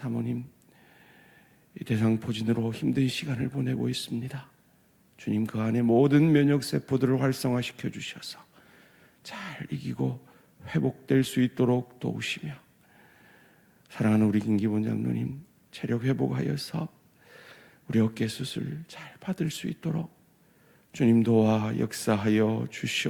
이 대상포진으로 힘든 시간을 보내고 있습니다. 주님, 그 안에 모든 면역세포들을 활성화시켜 주셔서 잘 이기고 회복될 수 있도록 도우시며, 사랑하는 우리 김기본 장로님 체력 회복하여서 우리 어깨 수술 잘 받을 수 있도록 주님 도와 역사하여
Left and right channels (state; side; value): identical; both; correlation 1.00